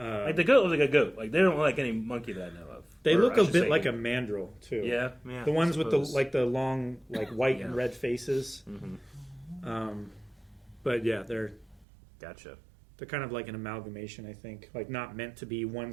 like the goat looks like a goat. Like they don't look like any monkey that I know of. They look a bit like a mandrill too. Yeah. The ones with the long like white and red faces. Mm-hmm. But yeah, they're gotcha. They're kind of like an amalgamation, I think. Like not meant to be one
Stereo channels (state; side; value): drops out; left; at 11.9 s